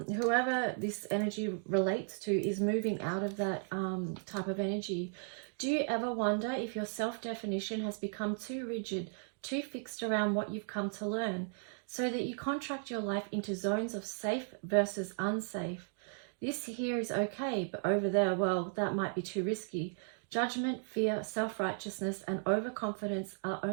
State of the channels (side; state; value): left; silent; 54 dB below the other